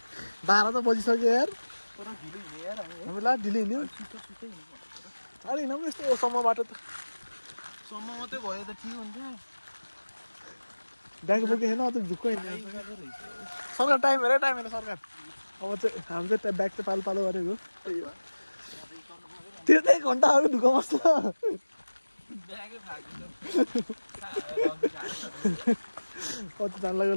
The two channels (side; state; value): both; inverted; correlation -1.00